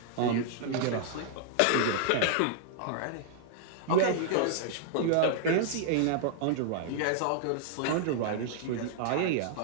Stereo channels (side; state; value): both; different; correlation -0.01